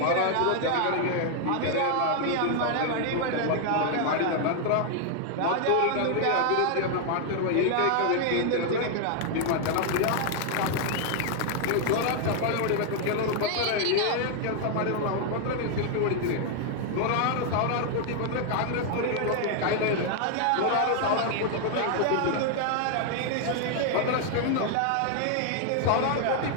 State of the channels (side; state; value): both; different; correlation 0.00